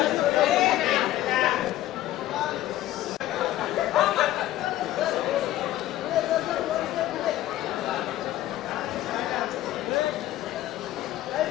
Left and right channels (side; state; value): right; quieter; 14.3 dB